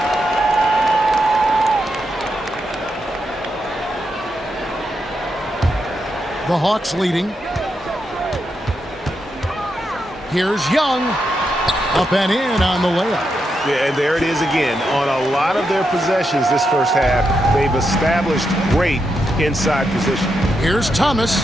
The Hawks leading. Here's Young. Up and in on the layup. Yeah, and there it is again. On a lot of their possessions this first half, they've established great inside position. Here's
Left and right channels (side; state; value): both; normal; correlation 0.84